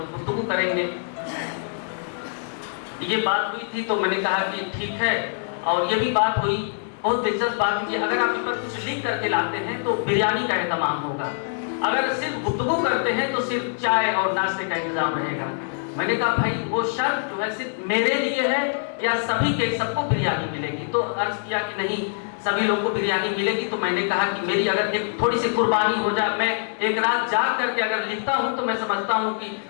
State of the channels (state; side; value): silent; right; digital silence